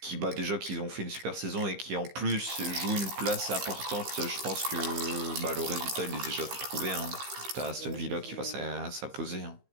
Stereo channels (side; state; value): left; late; 15 ms